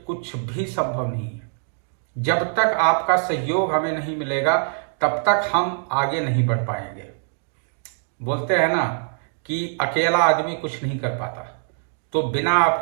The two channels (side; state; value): left; silent; digital silence